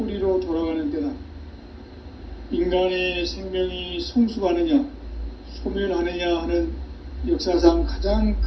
돌아가는 때다. 인간의 생명이 성숙하느냐, 소멸하느냐 하는 역사상 가장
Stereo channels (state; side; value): identical; both; correlation 1.00